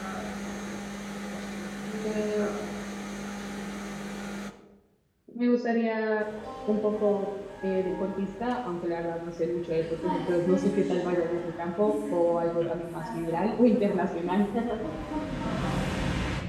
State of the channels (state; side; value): identical; both; correlation 1.00